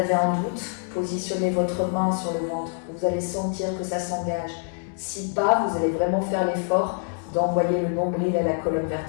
un doute, positionnez votre main sur le ventre. Vous allez sentir que ça s'engage. Si pas, vous allez vraiment faire l'effort d'envoyer le nombril à la colonne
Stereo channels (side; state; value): right; silent; 61 dB below the other